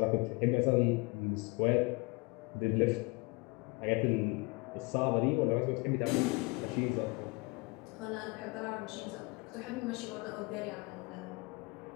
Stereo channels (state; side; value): quieter; right; 27.2 dB